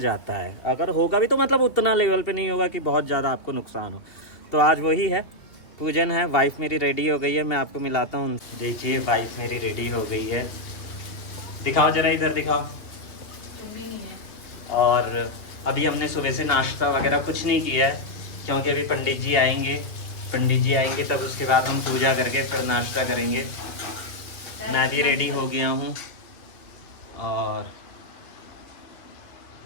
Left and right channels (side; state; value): right; late; 2.6 ms